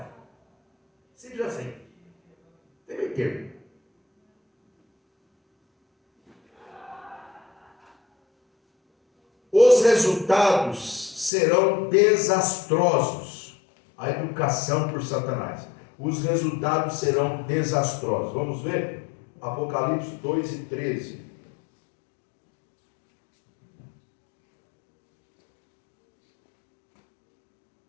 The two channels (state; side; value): drops out; right; at 11.3 s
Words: Simples assim. Tem meio termo. Os resultados serão desastrosos. A educação por Satanás. Os resultados serão desastrosos. Vamos ver? Apocalipse 2:13.